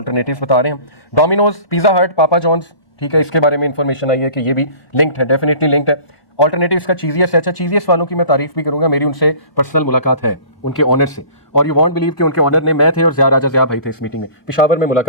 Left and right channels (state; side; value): late; right; 1.1 ms